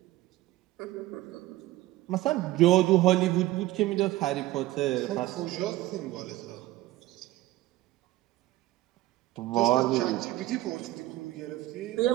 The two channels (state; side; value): quieter; left; 16.9 dB